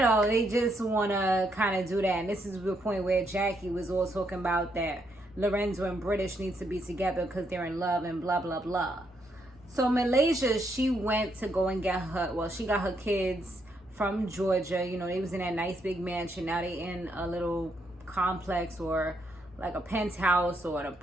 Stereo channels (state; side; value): normal; both; correlation 0.76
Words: know, they just want to kind of do that. And this is the point where Jackie was all talking about that Lorenzo and British needs to be together because they're in love and blah, blah, blah. So Malaysia, she went to go and get her, well, she got her kids from Georgia. You know, they was in that nice big mansion. Now they in a little complex or like a penthouse or an